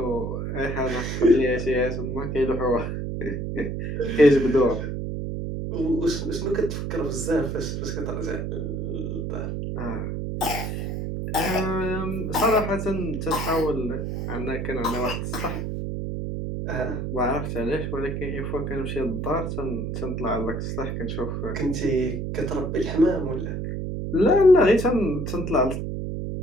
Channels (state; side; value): noise; right; hum, 3 dB below the sound